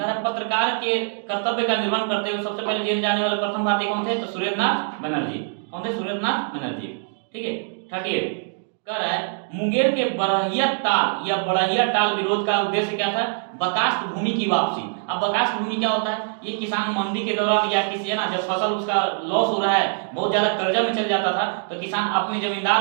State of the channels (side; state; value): left; silent; digital silence